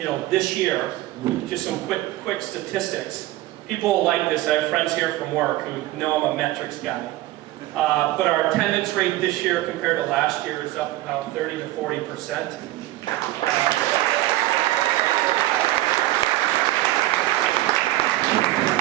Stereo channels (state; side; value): quieter; left; 16.6 dB